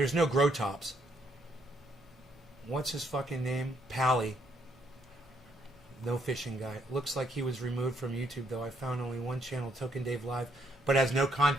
no grow tops. What's his fucking name? Pally. No fishing guy. Looks like he was removed from YouTube, though. I found only one channel, Token Dave Live, but has no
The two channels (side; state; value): both; normal; correlation 0.71